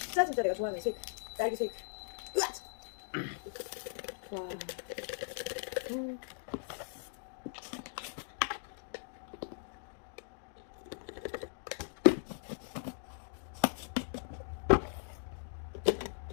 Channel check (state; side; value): silent; right; digital silence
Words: 내가 좋아하는 쉐이크. 딸기 쉐이크. 으악! 와.